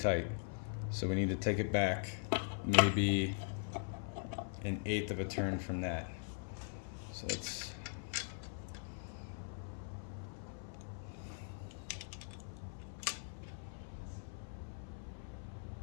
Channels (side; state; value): right; silent; 50 dB below the other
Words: So we need to take it back maybe 1/8 of a turn from that. So let's